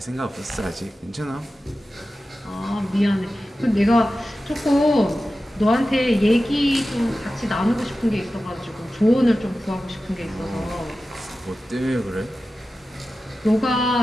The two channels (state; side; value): normal; both; correlation 0.94